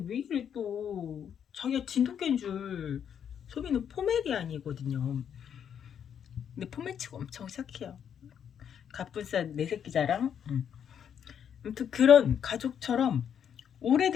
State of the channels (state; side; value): quieter; right; 8.4 dB